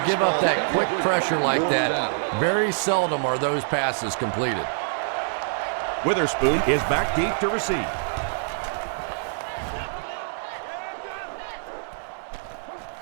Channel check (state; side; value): silent; left; digital silence